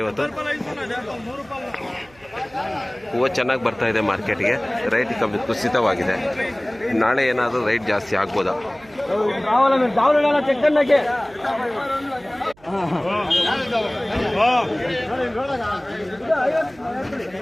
ಇವತ್ತು. ಹೂವು ಚೆನ್ನಾಗಿ ಬರ್ತಾ ಇದೆ ಮಾರ್ಕೆಟ್ಗೆ, ರೈಟ್ ಕಮ್ಮಿ ಕುಸಿತವಾಗಿದೆ. ನಾಳೆ ಏನಾದರೂ ರೈಟ್ ಜಾಸ್ತಿ ಆಗ್ಬೋದಾ?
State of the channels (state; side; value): noise; right; hum, 28 dB below the sound